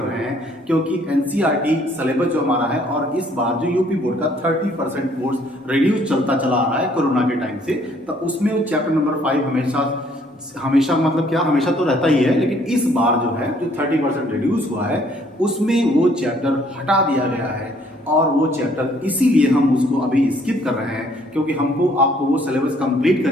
हैं क्योंकि एनसीईआरटी सिलेबस जो हमारा है और इस बार जो यूपी बोर्ड का 30% कोर्स रिड्यूस चलता चला आ रहा है कोरोना के टाइम से, तो उसमें चैप्टर नंबर 5 हमेशा मतलब क्या, हमेशा तो रहता ही है, लेकिन इस बार जो है जो 30% रिड्यूस हुआ है उसमें वो चैप्टर हटा दिया गया है। और वो चैप्टर इसीलिए हम उसको अभी स्किप कर रहे हैं क्योंकि हमको आपको वो सिलेबस कंप्लीट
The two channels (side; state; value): both; normal; correlation 0.63